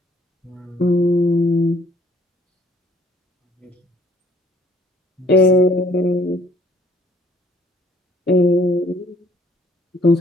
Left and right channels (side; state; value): both; normal; correlation 0.61